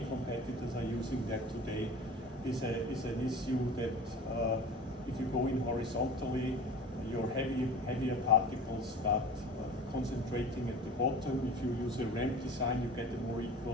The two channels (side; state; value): both; normal; correlation 0.38